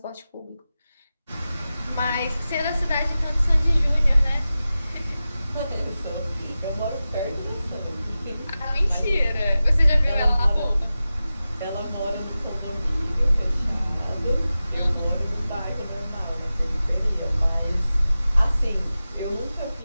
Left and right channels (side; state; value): both; inverted; correlation -0.94